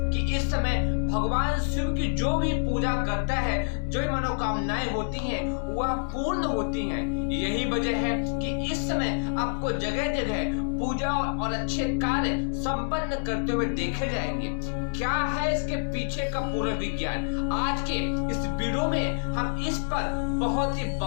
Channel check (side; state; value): right; silent; digital silence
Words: कि इस समय भगवान शिव की जो भी पूजा करता है, जो मनोकामनाएं होती हैं, वह पूर्ण होती हैं। यही वजह है कि इस समय आपको जगह जगह पूजा और अच्छे कार्य संपन्न करते हुए देखे जाएंगे। क्या है इसके पीछे का पूरा विज्ञान? आज के इस वीडियो में हम इस पर बहुत ही